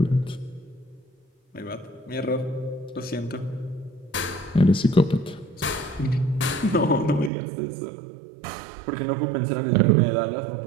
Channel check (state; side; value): drops out; left; at 7.3 s